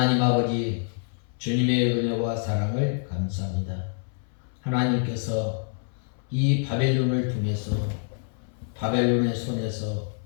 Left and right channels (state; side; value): silent; right; 60 dB below the other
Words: 아버지, 주님의 은혜와 사랑을 감사합니다. 하나님께서 이 바벨론을 통해서 바벨론의 손에서